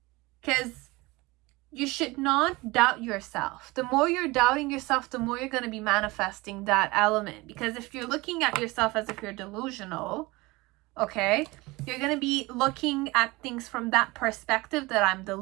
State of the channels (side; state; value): left; quieter; 22.3 dB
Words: Because you should not doubt yourself. The more you're doubting yourself, the more you're going to be manifesting that element. Because if you're looking at yourself as if you're delusional, okay, you're going to be looking at things from that perspective, that I'm